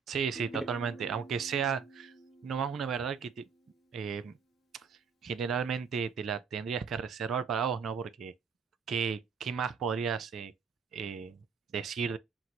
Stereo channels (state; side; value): quieter; left; 6.2 dB